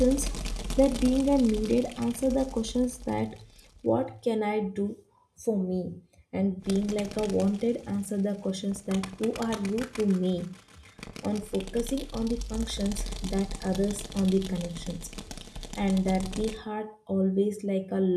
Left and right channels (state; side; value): identical; both; correlation 1.00